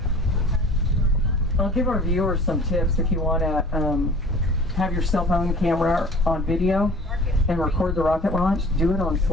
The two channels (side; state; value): both; normal; correlation 0.45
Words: I'll give our viewers some tips if you want to have your cell phone camera on video and record the rocket launch. Do it on